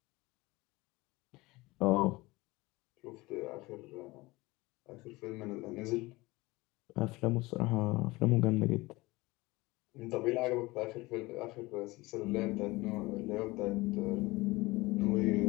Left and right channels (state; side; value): quieter; right; 21.5 dB